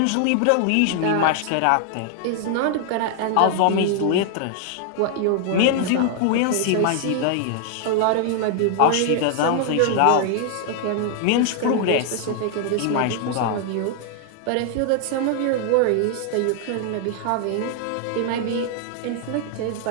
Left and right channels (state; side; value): different; both; correlation 0.00